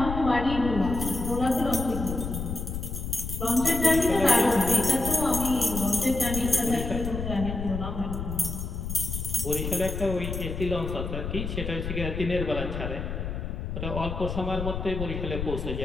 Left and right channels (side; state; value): left; noise; rumble, 5 dB below the sound